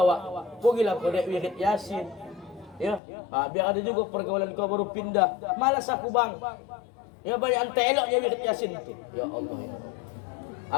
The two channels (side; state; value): right; drops out; at 3.0 s